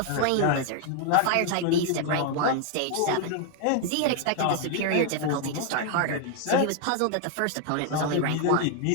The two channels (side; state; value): both; different; correlation 0.00